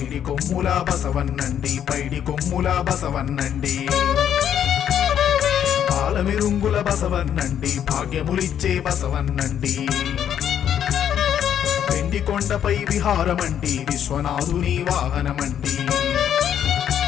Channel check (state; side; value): quieter; right; 9.5 dB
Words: కొమ్ముల బసవన్నండి, పైడి కొమ్ముల బసవన్నండి. పాలమిరుంగుల బసవన్నండి, భాగ్యములిచ్చే బసవన్నండి. వెండి కొండపై విహారమండి, విశ్వనాథుని వాహనమండి.